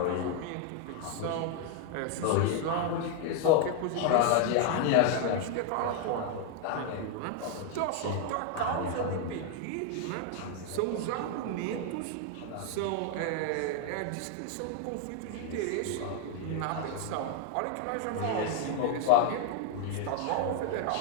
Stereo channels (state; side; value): different; both; correlation 0.00